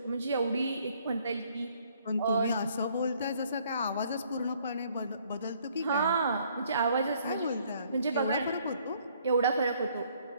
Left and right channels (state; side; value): inverted; both; correlation -0.63